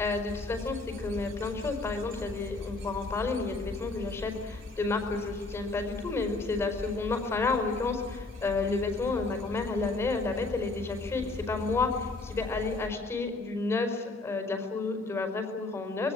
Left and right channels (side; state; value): right; quieter; 3.3 dB